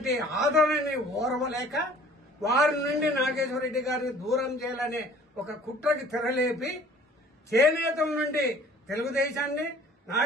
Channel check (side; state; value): both; normal; correlation 0.51